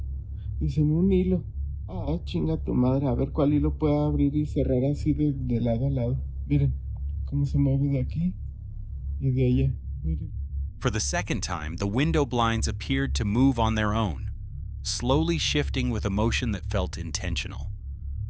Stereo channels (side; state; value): both; identical; correlation 1.00